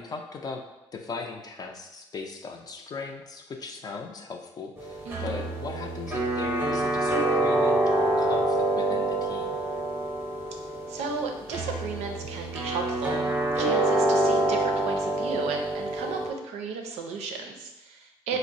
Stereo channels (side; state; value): both; normal; correlation 0.61